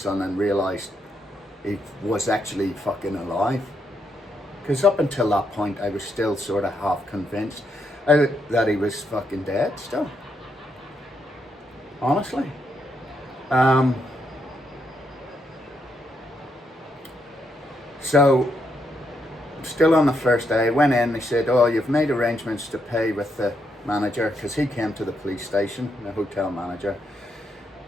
and realised he was actually fucking alive. Because up until that point, I was still sort of half convinced that he was fucking dead still. Honestly. So, still on the first day, I went in, they said, oh, you've made arrangements to pay with the manager, because he came to the police station, the hotel manager.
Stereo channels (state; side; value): normal; both; correlation 0.79